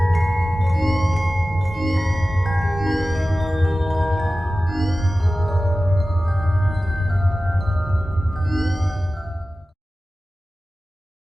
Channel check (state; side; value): normal; both; correlation 0.96